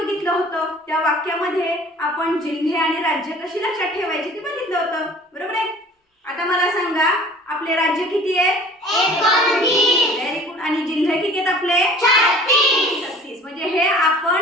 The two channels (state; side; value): normal; both; correlation 0.47